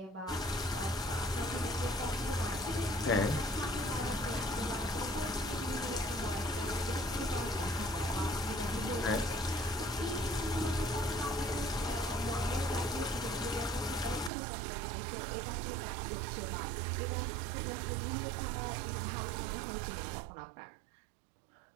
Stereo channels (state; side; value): drops out; left; at 14.3 s